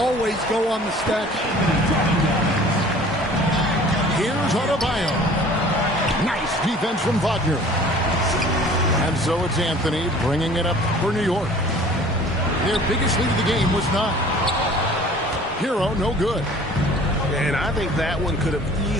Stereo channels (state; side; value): normal; both; correlation 0.48